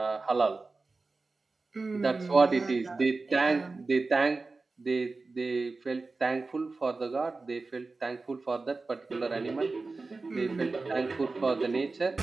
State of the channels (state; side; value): quieter; left; 3.7 dB